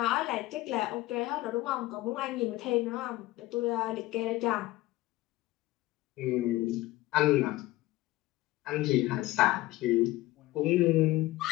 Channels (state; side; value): quieter; right; 17.9 dB